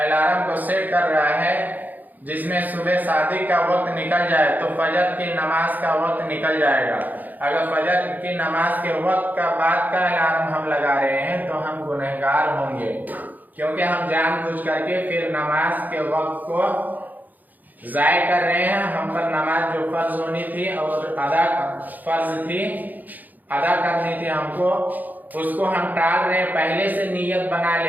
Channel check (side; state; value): left; late; 0.083 ms